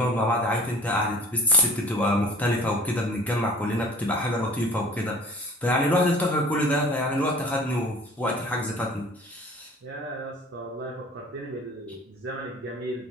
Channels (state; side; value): normal; both; correlation 0.46